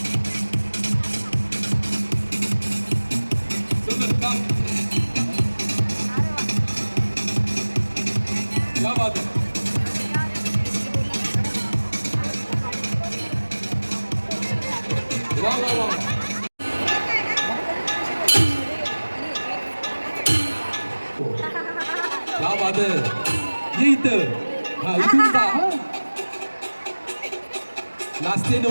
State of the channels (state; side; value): inverted; both; correlation -1.00